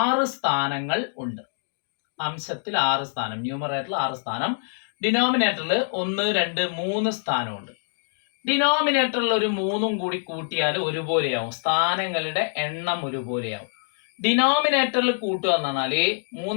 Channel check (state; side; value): silent; right; digital silence